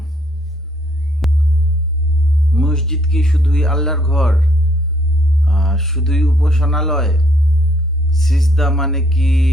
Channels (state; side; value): normal; both; correlation 0.68